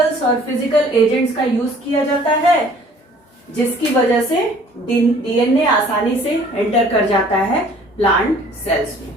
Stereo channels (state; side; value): normal; both; correlation 0.54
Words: और फिजिकल एजेंट्स का यूज किया जाता है जिसकी वजह से डीएनए आसानी से एंटर कर जाता है प्लांट सेल्स में.